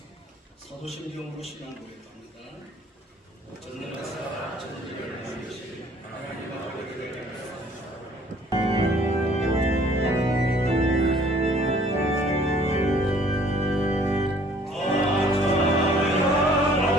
사도신경으로 신앙 고백합니다. 전능하사 천지를 만드신 하나님 아버지를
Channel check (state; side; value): normal; both; correlation 0.57